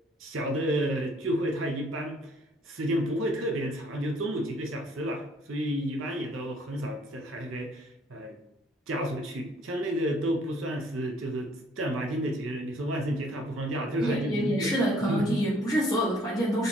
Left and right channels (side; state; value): both; normal; correlation 0.61